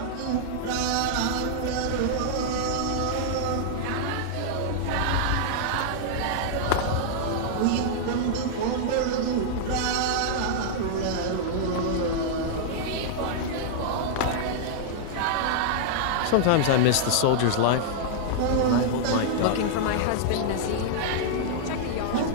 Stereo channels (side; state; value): both; different; correlation -0.01